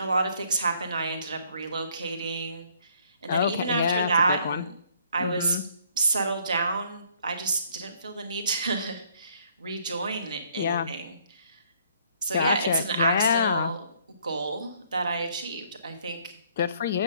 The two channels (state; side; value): inverted; both; correlation -0.64